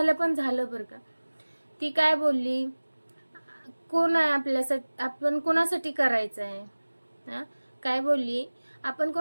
पण झालं बरं का. ती काय बोलली, कोण आहे आपल्यासाठी, आपण कोणासाठी करायचं आहे हा, काय बोलली, आपण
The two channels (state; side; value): inverted; both; correlation -1.00